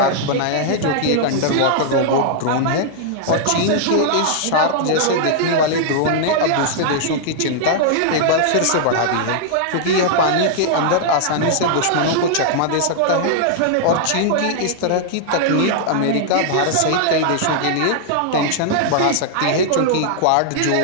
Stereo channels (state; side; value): different; both; correlation -0.01